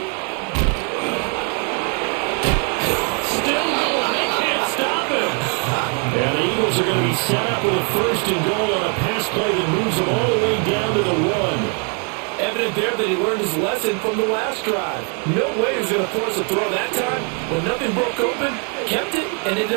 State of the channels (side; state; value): left; quieter; 39.1 dB